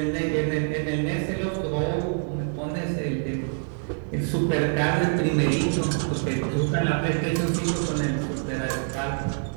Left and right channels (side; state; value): left; silent; digital silence